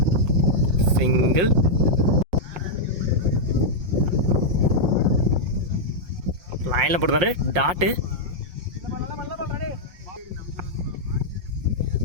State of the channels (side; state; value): left; late; 5.6 ms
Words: சிங்கிள். லைனில் போடுறாரு டாட்டு.